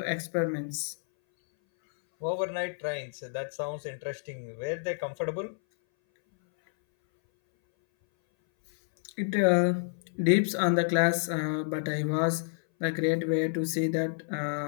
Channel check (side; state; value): right; silent; 58 dB below the other